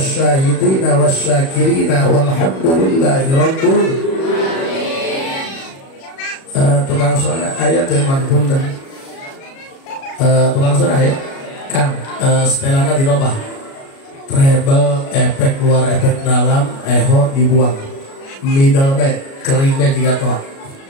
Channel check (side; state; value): right; late; 37 ms